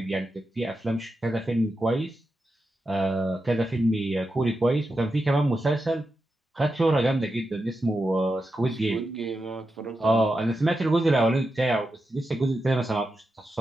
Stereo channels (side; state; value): both; normal; correlation 0.88